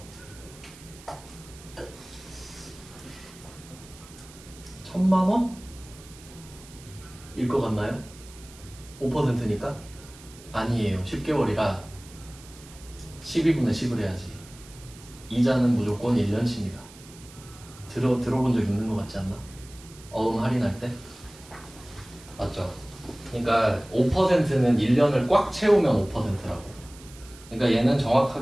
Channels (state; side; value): noise; right; hiss, 20 dB below the sound